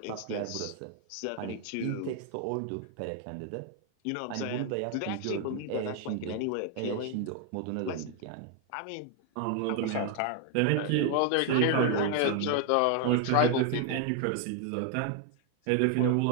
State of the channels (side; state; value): both; different; correlation 0.00